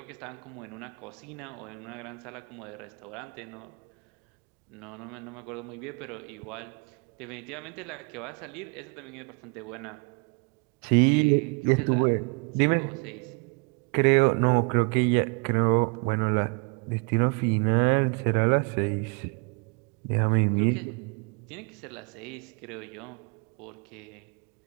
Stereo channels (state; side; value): quieter; left; 33.8 dB